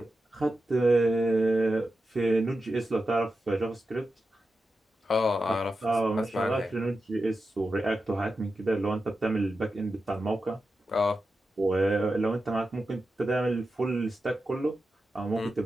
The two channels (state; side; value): normal; both; correlation 0.91